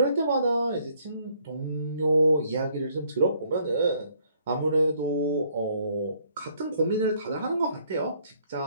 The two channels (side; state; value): both; inverted; correlation -0.66